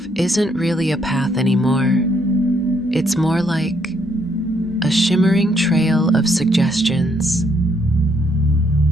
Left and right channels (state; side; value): normal; both; correlation 0.71